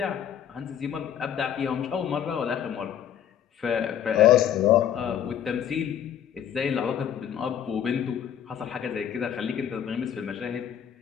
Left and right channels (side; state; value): right; quieter; 9.5 dB